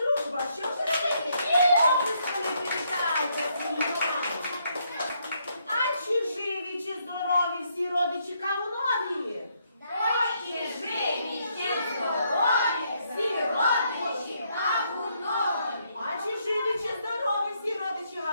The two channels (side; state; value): both; inverted; correlation -0.73